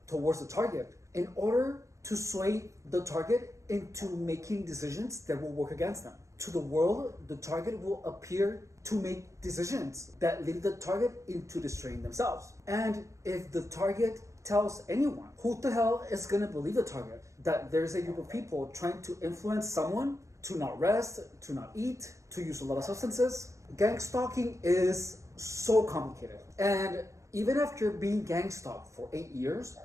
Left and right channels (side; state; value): left; late; 0.15 ms